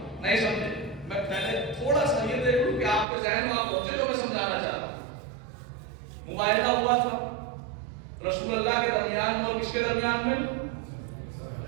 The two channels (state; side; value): drops out; left; at 3.1 s